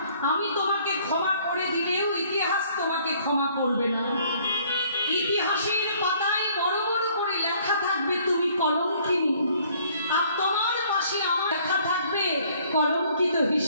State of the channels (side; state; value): both; inverted; correlation -0.60